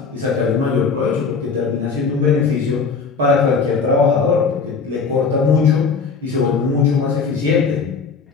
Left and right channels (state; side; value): quieter; right; 5.1 dB